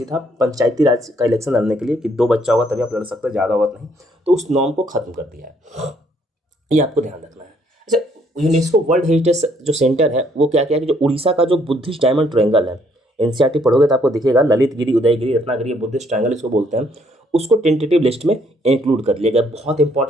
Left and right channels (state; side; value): normal; both; correlation 0.67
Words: था, पंचायती राज का इलेक्शन लड़ने के लिए कि 2 बच्चा होगा तभी आप लड़ सकते हैं, ज़्यादा होगा नहीं, तो उस नॉर्म को खत्म कर दिया है, ये आपको ध्यान रखना है। अच्छा, यूनेस्को वर्ल्ड हेरिटेज जो सेंटर है वो क्या क्या है कि जो उड़ीसा का जो बुद्धिस्ट डायमंड ट्रायंगल है, NCERT पढ़ोगे तो आपको दिखेगा, ललित गिरी, उदयगिरी, रत्नागिरी, बुद्धिस्ट ट्रायंगल इसको बोलते हैं, उसको टेंटेटिव लिस्ट में इंक्लूड कर लिया गया। बहुत